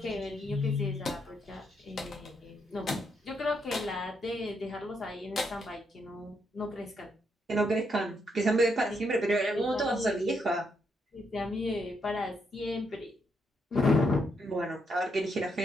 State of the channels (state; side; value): normal; both; correlation 0.77